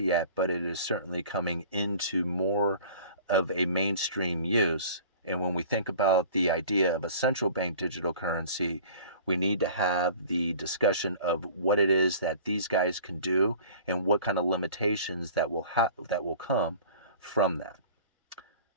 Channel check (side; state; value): both; inverted; correlation -0.45